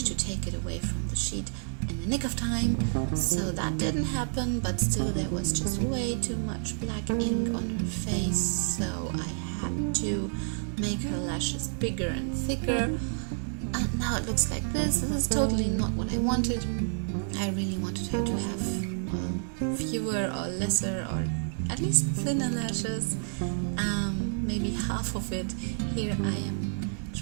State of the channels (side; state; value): left; silent; digital silence